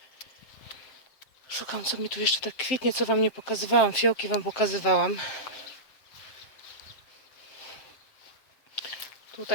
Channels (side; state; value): right; late; 7.7 ms